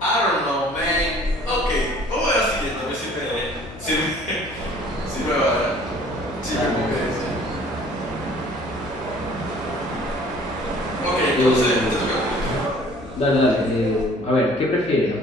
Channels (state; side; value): noise; left; hum, 17 dB below the sound